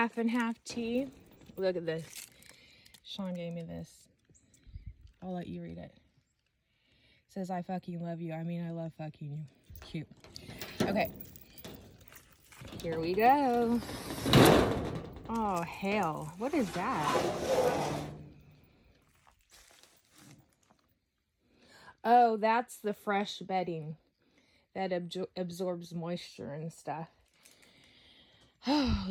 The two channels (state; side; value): identical; both; correlation 1.00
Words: and half tea. Look at this. Sean gave me this. I'll let you read it. It says, I fucking love you. I mean, I love fucking you. Cute. Okay. Here we go. Oh, hell. What is that? Oh, that's the fresh bedding that absorbs moisture and stuff. Oh,